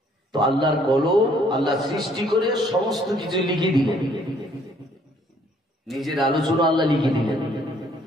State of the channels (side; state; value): both; normal; correlation 0.63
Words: তো আল্লাহর কলম আল্লাহ সৃষ্টি করে সমস্ত কিছু লিখে দিলেন, নিজের আলোচনা আল্লাহ লিখে দিলেন।